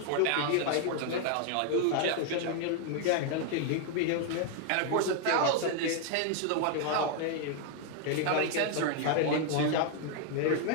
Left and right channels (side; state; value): both; different; correlation 0.00